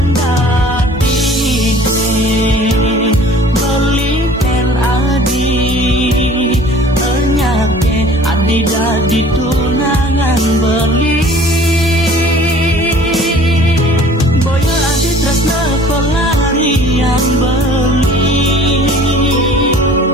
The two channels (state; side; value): normal; both; correlation 0.49